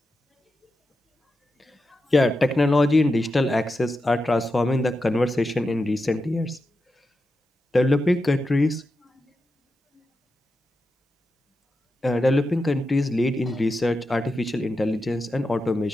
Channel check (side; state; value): both; normal; correlation 0.89